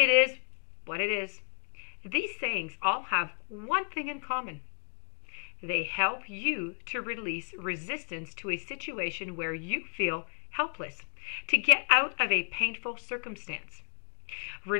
is what it is. These sayings all have one thing in common. They help you to release resistance to a situation where you feel helpless, to get out of a painful circumstance.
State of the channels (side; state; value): right; silent; digital silence